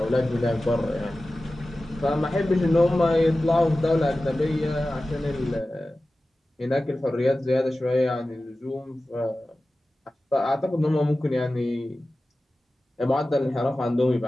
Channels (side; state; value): both; normal; correlation 0.96